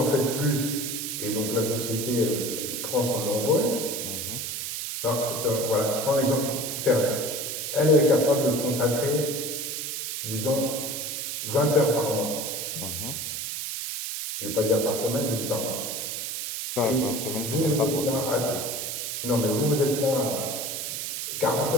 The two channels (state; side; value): noise; right; hiss, 4 dB below the sound